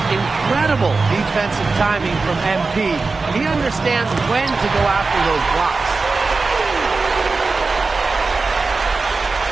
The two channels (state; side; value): quieter; left; 4.0 dB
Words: incredible defensive timing from MP. He understands when to go after those blocks.